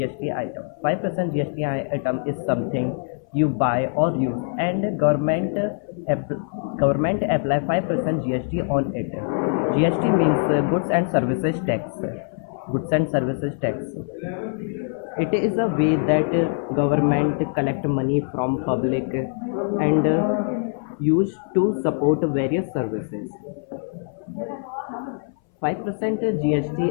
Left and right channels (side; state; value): right; silent; 60 dB below the other